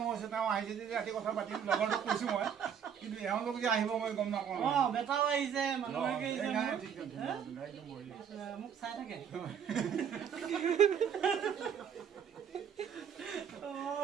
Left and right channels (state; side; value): quieter; left; 7.9 dB